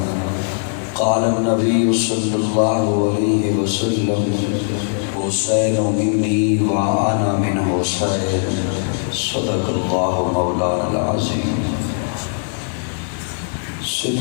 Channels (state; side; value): silent; right; 66 dB below the other